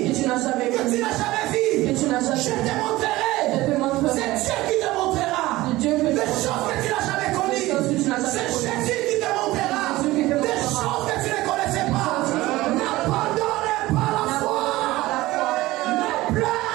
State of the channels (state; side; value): quieter; left; 18.3 dB